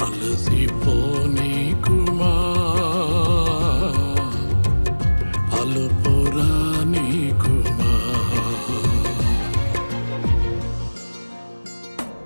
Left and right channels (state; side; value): inverted; both; correlation -1.00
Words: అలసిపోని కుమా అలుపురాని కుమా